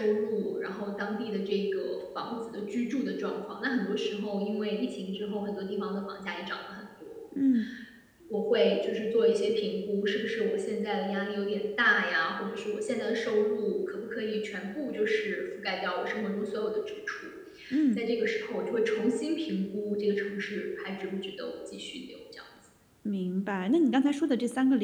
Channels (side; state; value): both; identical; correlation 1.00